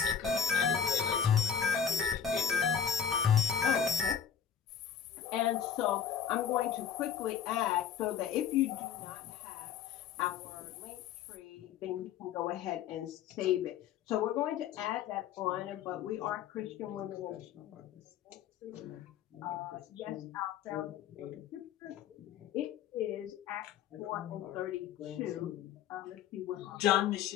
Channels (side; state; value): right; quieter; 8.3 dB